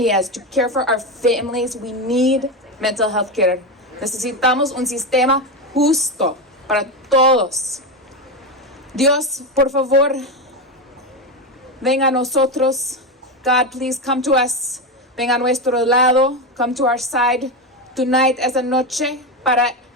To care for our families, we need mental health care. Necesitamos un sistema justo para todos. Dios, por favor, venga a nosotros. God, please come to us. Venga a nuestro lado. Come to our side tonight, esa noche, para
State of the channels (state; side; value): normal; both; correlation 0.14